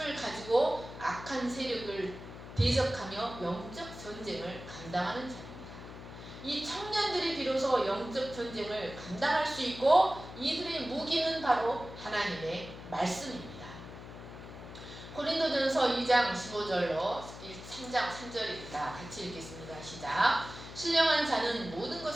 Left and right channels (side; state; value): left; noise; hum, 13 dB below the sound